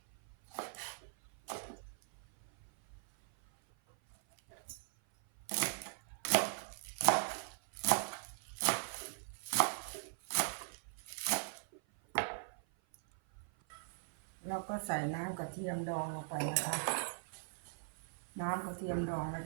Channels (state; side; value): silent; left; 51 dB below the other